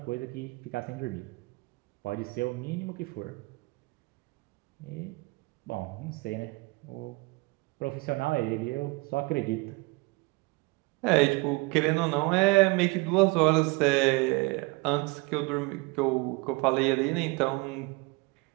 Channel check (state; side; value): quieter; left; 25.4 dB